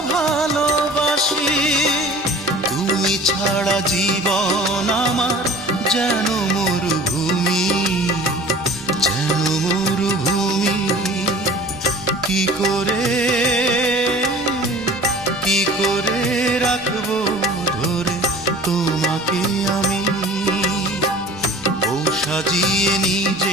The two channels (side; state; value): left; noise; rumble, 27 dB below the sound